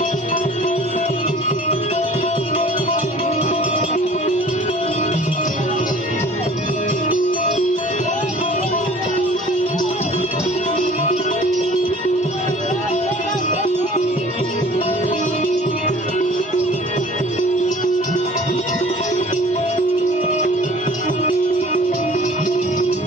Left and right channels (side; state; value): both; normal; correlation 0.48